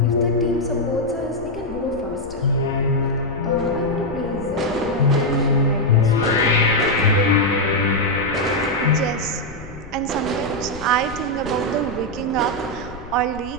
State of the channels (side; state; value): left; noise; rumble, 16 dB below the sound